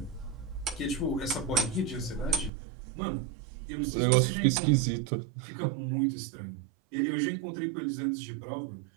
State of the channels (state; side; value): drops out; left; at 2.5 s